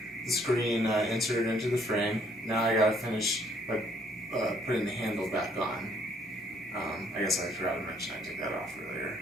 the screen inserted into the frame. Now I gotta finish by putting the handle back on. I guess I forgot to mention I took that off earlier.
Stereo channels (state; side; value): normal; both; correlation 0.65